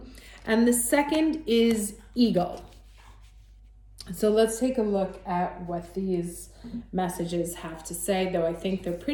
and the second is eagle. So let's take a look at what these messages have to say, though I think they're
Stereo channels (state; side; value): identical; both; correlation 1.00